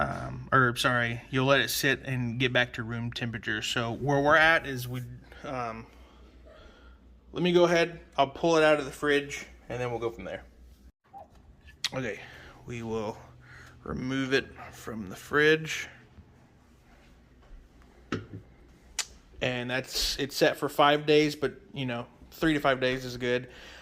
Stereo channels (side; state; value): both; identical; correlation 1.00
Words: let it sit and get back to room temperature. So where we're at is let me go ahead. I'll pull it out of the fridge, and then we'll go from there. Okay, we will remove it from the fridge. And it's set for 5 days, but 3 to 5 days is good.